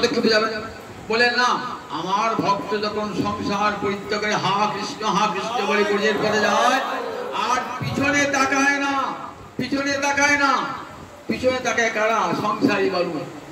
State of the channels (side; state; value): both; identical; correlation 1.00